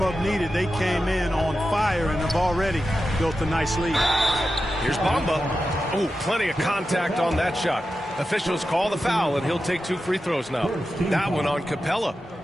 needed. They came in on fire and have already built a nice lead. Here's Bamba. Oh, plenty of contact on that shot. Officials call the foul, and he'll take 2 free throws now. That one on Capella.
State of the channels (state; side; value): normal; both; correlation 0.91